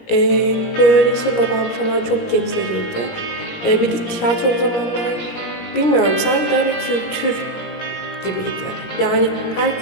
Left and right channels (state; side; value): late; right; 17 ms